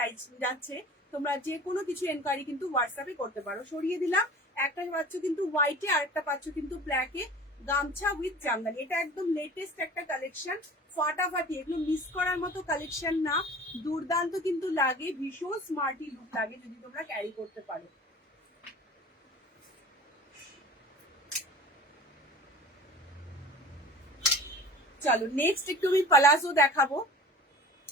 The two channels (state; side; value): normal; both; correlation 0.41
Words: যাচ্ছে, তোমরা যে কোনো কিছু এনকোয়ারি কিন্তু হোয়াটসঅ্যাপে করতে পারো। সরিয়ে দিলাম, একটা পাচ্ছ কিন্তু হোয়াইটে আর একটা পাচ্ছ কিন্তু ব্ল্যাকে, গামছা উইথ জামদানি। এটা একদম লেটেস্ট একটা কালেকশন, ফাটাফাটি, এগুলো মিস করার মতো কালেকশন না, দুর্দান্ত কিন্তু লাগে, ভীষণ স্মার্টি লুক লাগে যদি তোমরা ক্যারি করতে পারো। চলো নেক্সট একটু আমি পালাজো দেখাবো।